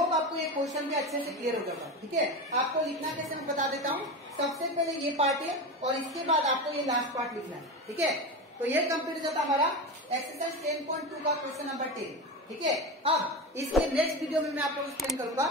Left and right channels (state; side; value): normal; both; correlation 0.22